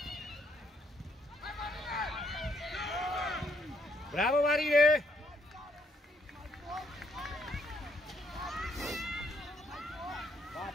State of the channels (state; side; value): normal; both; correlation 0.71